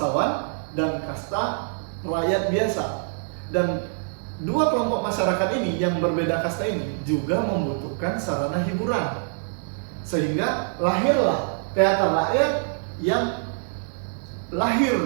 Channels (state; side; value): silent; left; 62 dB below the other